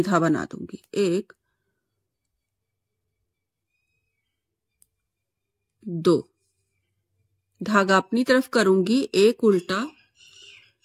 बना दूंगी, 1 2। धागा अपनी तरफ करूंगी, एक उल्टा,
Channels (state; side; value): identical; both; correlation 1.00